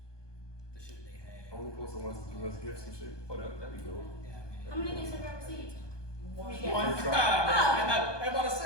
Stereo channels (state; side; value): late; right; 1.2 ms